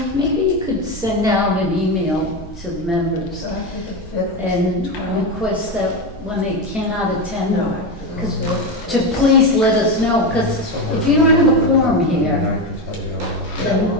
maybe you could send out an email to the members So I think the 5th. and request that when they cannot attend, No. because to please let us know, because if you don't have a quorum And here, I can tell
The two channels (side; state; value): both; normal; correlation 0.15